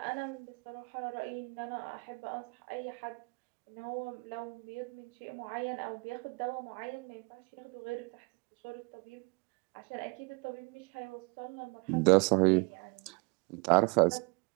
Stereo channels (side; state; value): left; quieter; 30.3 dB